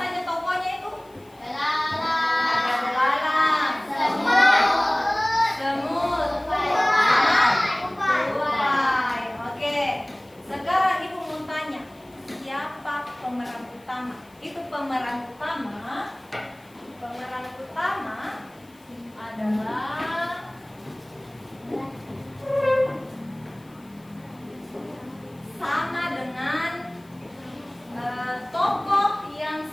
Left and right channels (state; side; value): noise; left; hiss, 30 dB below the sound